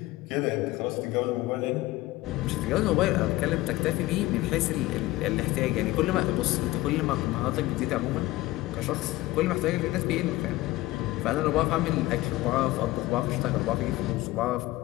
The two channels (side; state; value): right; quieter; 18.0 dB